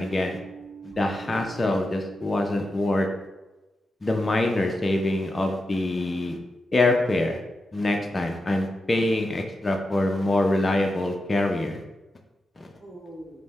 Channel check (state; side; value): normal; both; correlation 0.89